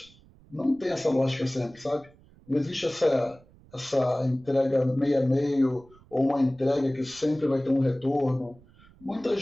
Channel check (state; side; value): noise; right; rumble, 27 dB below the sound